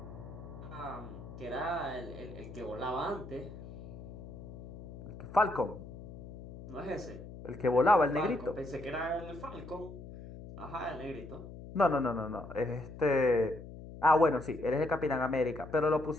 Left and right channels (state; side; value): noise; left; hum, 13 dB below the sound